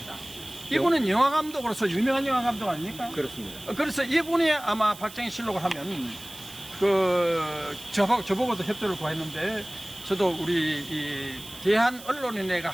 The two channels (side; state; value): right; noise; hiss, 16 dB below the sound